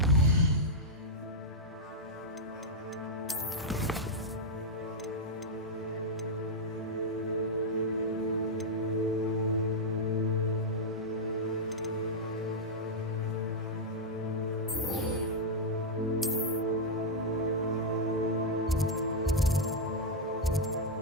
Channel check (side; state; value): both; normal; correlation -0.04